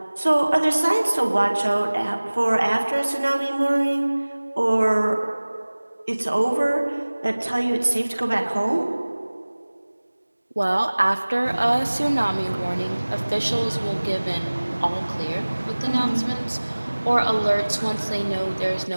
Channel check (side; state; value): both; inverted; correlation -1.00